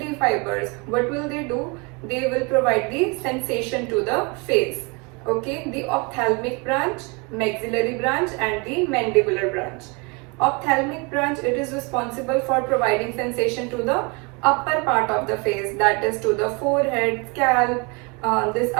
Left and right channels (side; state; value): left; quieter; 29.8 dB